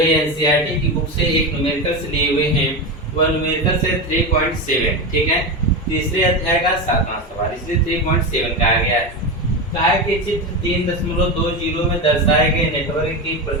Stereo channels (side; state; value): both; normal; correlation 0.18